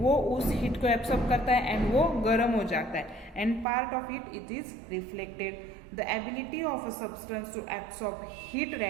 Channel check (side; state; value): left; drops out; at 3.7 s